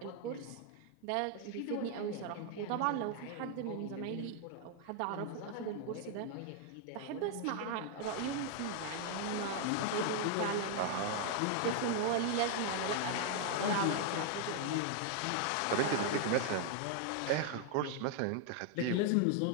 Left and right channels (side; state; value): both; different; correlation 0.00